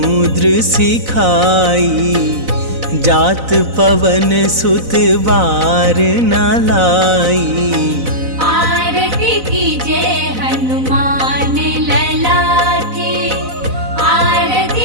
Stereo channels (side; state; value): left; late; 4.0 ms